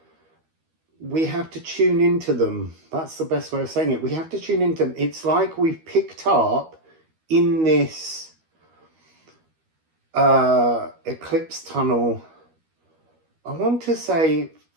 we have to tune into them. That's the best way of saying it. We have to tune into them. It's like we've picked up in this eclipse tunnel, I want to say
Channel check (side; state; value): left; late; 13 ms